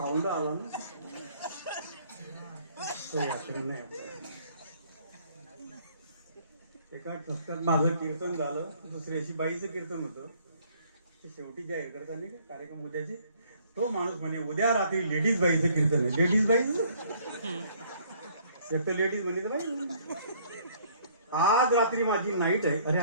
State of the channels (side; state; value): both; inverted; correlation -0.61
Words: आला ना, तो व्याकरण नाही. एका ठसक्यात माझं कीर्तन झालं, दुसऱ्याशी बाईचं कीर्तन होतं. ते शेवटी जाहीर करताना का कार्यक्रम उद्याचे, तो माणूस म्हणे उद्या रात्री लेडीज बाईचं कीर्तन आहे. लेडीज बाईच एक तर लेडीज म्हणे बाई, आज रात्री माझी नाईट आहे. अरे